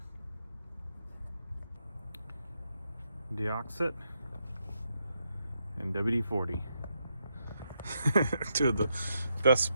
Deoxit and WD-40. Two of the best,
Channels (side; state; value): both; inverted; correlation -0.81